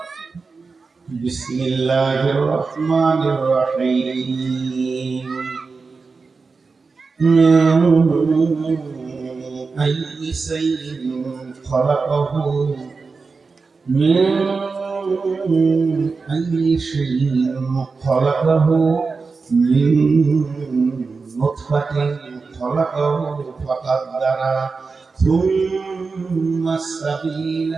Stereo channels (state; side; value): quieter; left; 4.5 dB